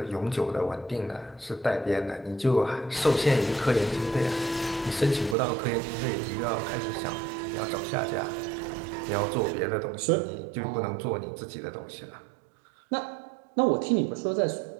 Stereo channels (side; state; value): left; drops out; at 5.4 s